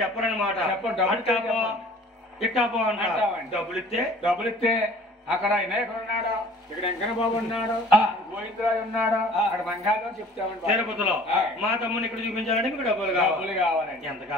చెప్పరనమాట. ఇట్టాపో అంటారు. డబ్బులు ఇస్తే అక్కడ వినాయకుడు ఉన్నాడు, ఇక్కడ వెంకన్న బాబు ఉన్నాడు, గోవిందరాజు ఉన్నాడు, అక్కడ మంగాలో చెప్తామండి. తిరుపతిలో మా తమ్ముని ఇక్కడ చూపించాలంటే మీకు డబ్బులు కావాలండి. ఎంత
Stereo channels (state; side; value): normal; both; correlation 0.49